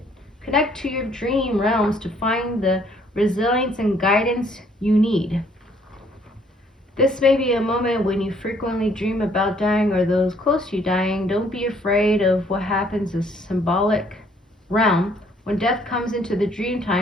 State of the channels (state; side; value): normal; both; correlation 0.63